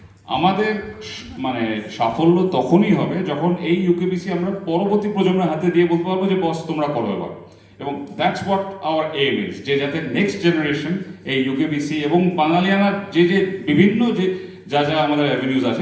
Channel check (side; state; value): both; identical; correlation 1.00